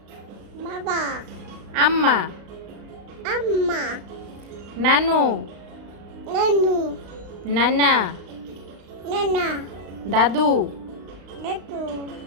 বাবা আম্মা। আম্মা নানু নানু নানা নানা দাদু দাদু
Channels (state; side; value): late; left; 35 ms